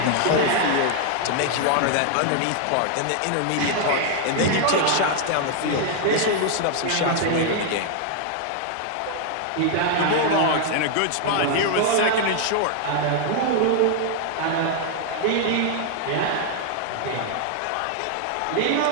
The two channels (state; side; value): different; both; correlation 0.00